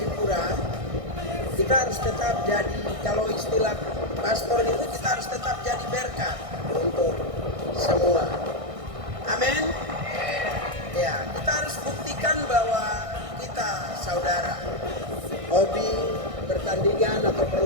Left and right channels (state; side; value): late; left; 1.6 ms